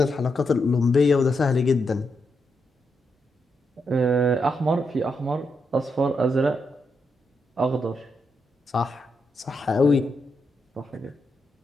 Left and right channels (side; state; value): both; normal; correlation 0.82